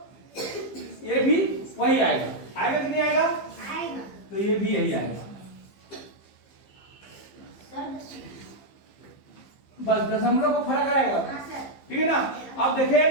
ये भी वही आएगा, आएगा कि नहीं आएगा, आएगा। तो ये भी यही आएगा, बस दशमलव को फर्क आएगा, ठीक है ना। अब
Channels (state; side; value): late; right; 15 ms